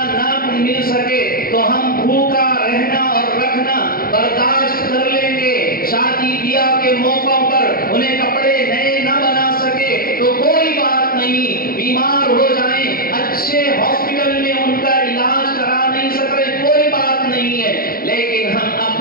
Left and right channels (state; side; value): late; right; 0.43 ms